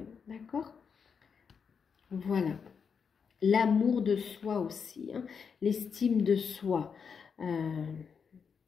D'accord? Voilà. L'amour de soi aussi, hein, l'estime de soi.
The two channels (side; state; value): right; quieter; 6.3 dB